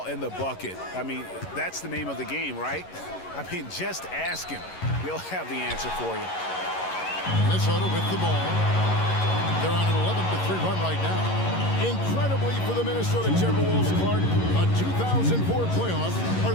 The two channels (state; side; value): late; right; 11 ms